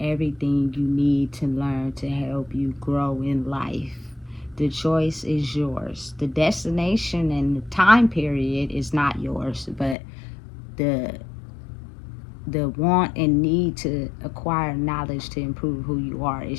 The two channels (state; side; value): drops out; right; at 10.0 s